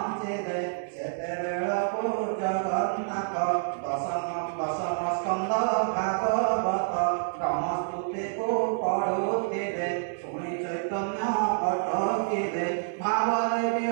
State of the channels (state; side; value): silent; left; 59 dB below the other